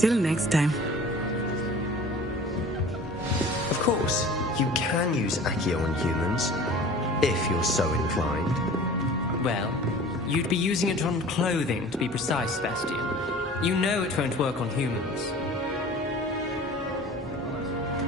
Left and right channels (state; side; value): normal; both; correlation 0.43